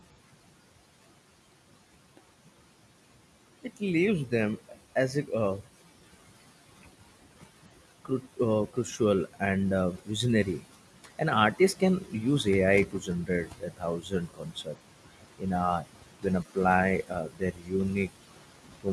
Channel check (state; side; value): identical; both; correlation 1.00